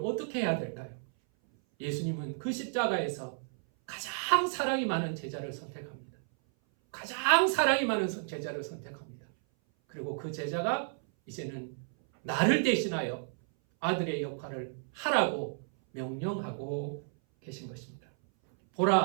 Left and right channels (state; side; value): silent; left; 56 dB below the other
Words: 해야 될까요? 예수님은 그 십자가에서 가장 사랑이 많은 제자를 선택합니다. 가장 사랑이 많은 제자를 선택합니다. 그리고 그 제자가 이제는 나를 대신하여 아들의 역할을 하라고 명령하고 계신 것입니다.